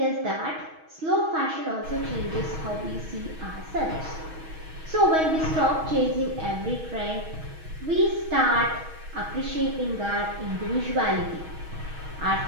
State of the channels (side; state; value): left; late; 6.3 ms